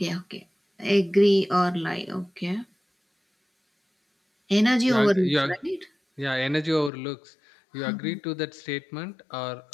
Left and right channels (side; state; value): right; drops out; at 6.9 s